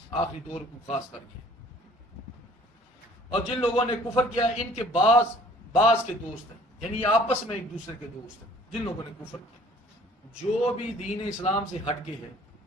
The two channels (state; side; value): normal; both; correlation 0.54